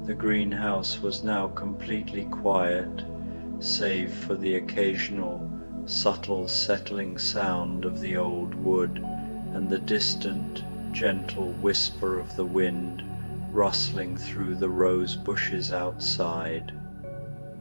The greenhouse was now completely quiet, save for the occasional, subtle settling sound of the old wood and the distant, gentle whisper of the wind rustling through the rose bushes outside.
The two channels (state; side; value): inverted; both; correlation -1.00